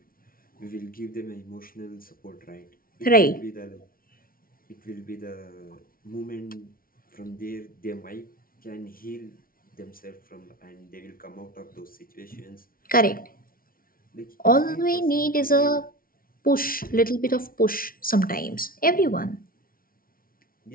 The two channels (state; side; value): late; right; 0.42 ms